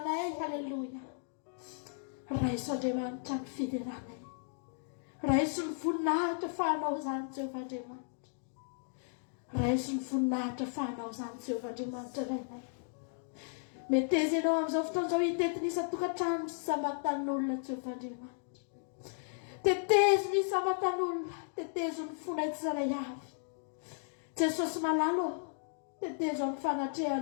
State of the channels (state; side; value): silent; right; digital silence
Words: Haleluia. Raha izy Andriamanitra no fideranay. Raha izy no voninahitra fahanao zany Jehovah Andriamanitra. Raha izy no voninahitra fahanao zany Jehovah Andriamanitra rainay. Meteza ianao amin'izao fotoan'izao hitetinisa tokantrano sy samatan'olona Jehovah Andriamanitra. Tetezo ny samatan'olona. Tetezo ny fonay tsirairay avy. Jesosy malalo. Tetezo amin'ny